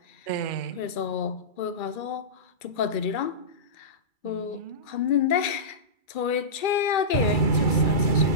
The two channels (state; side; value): late; right; 2.3 ms